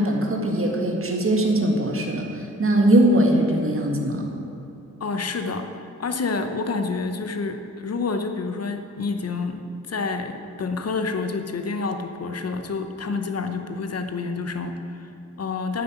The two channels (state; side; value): normal; both; correlation 0.49